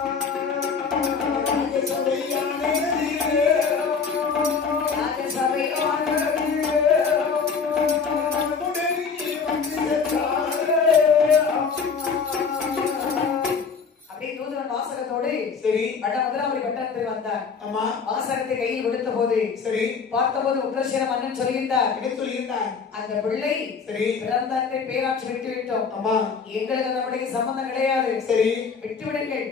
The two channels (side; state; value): right; quieter; 5.5 dB